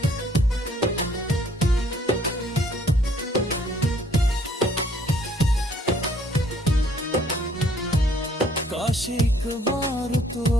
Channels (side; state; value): both; normal; correlation 0.62